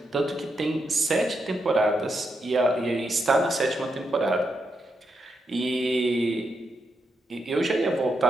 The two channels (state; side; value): normal; both; correlation 0.82